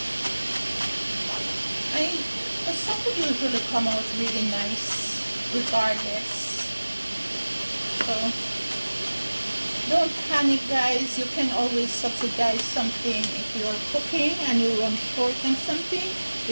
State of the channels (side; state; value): both; inverted; correlation -1.00